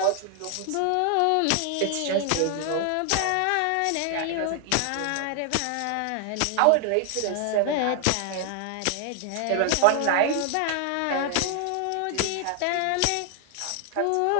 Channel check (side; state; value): both; different; correlation 0.00